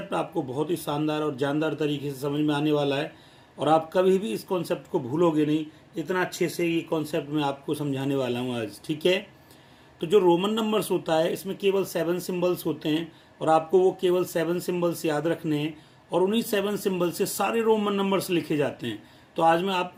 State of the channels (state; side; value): identical; both; correlation 1.00